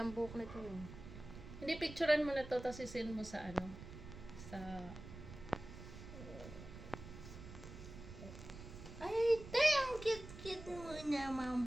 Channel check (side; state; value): right; noise; rumble, 13 dB below the sound